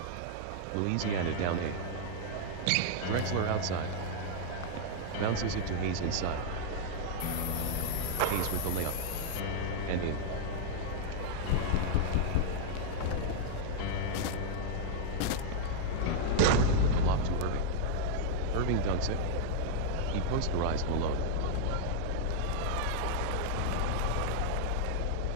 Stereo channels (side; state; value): both; different; correlation -0.01